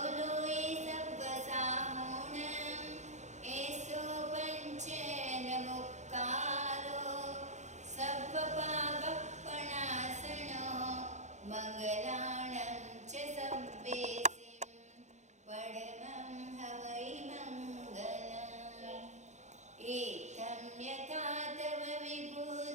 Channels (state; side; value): late; left; 0.34 ms